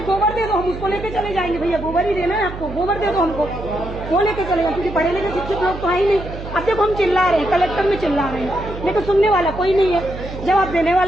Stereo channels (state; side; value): noise; right; hum, 10 dB below the sound